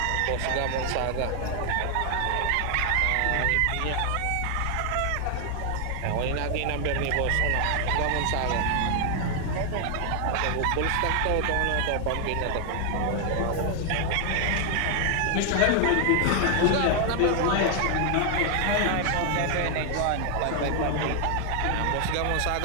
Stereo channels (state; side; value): different; both; correlation 0.00